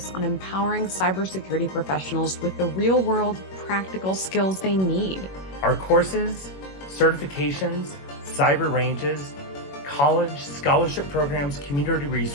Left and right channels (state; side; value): late; right; 21 ms